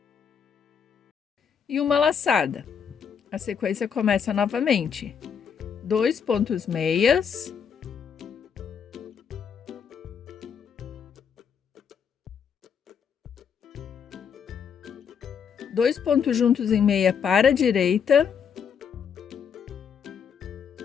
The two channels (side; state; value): right; quieter; 7.1 dB